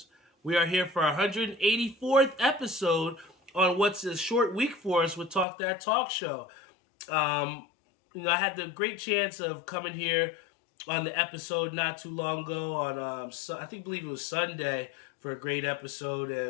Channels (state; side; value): drops out; right; at 5.5 s